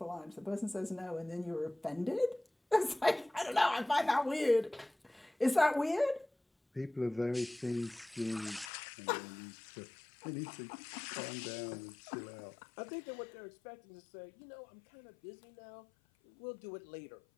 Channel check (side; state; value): right; drops out; at 8.7 s